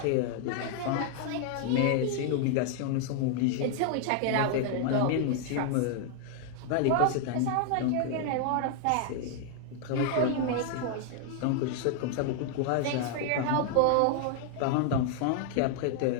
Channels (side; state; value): both; different; correlation 0.00